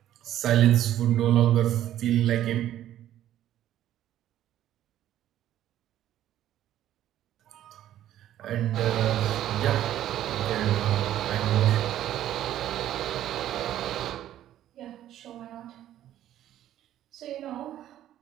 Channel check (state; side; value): quieter; left; 12.2 dB